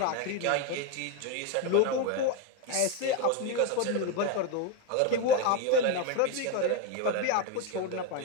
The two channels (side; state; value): both; different; correlation 0.02